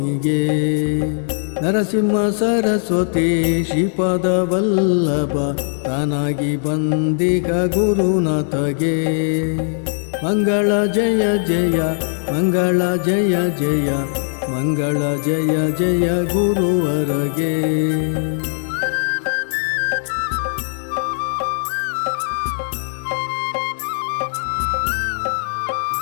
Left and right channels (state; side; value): silent; right; digital silence